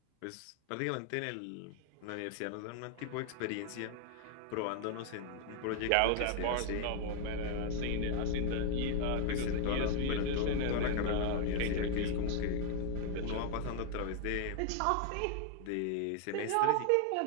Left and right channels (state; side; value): different; both; correlation 0.01